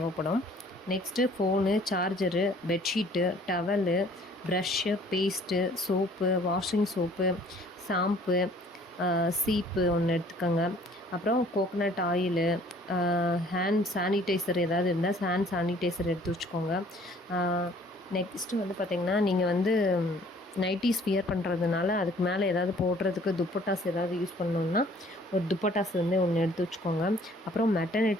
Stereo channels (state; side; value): normal; both; correlation 0.56